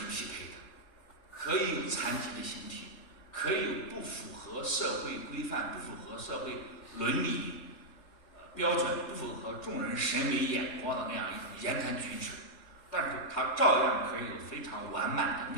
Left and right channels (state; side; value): late; right; 3.7 ms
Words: 匹配的。可以有残疾的形体，可以有不符合社会规范、不符合社会伦理标准，不符合众人审美眼光的那样一种言谈举止，但是他照样可以有非常完满